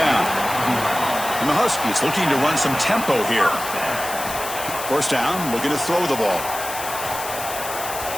And the Huskies looking to run some tempo here. First down, looking to throw the ball.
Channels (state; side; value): noise; left; hiss, 8 dB below the sound